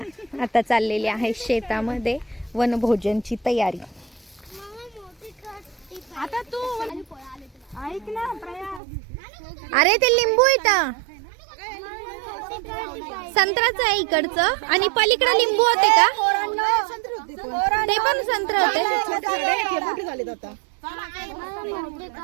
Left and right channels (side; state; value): left; drops out; at 8.8 s